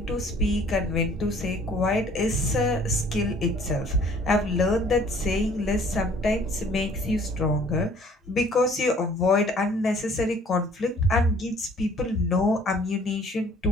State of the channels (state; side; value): normal; both; correlation 0.55